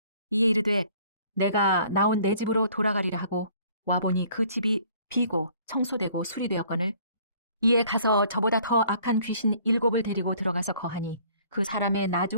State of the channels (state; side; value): inverted; both; correlation -0.57